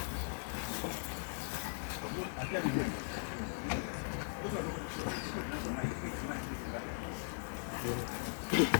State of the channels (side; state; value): right; silent; 52 dB below the other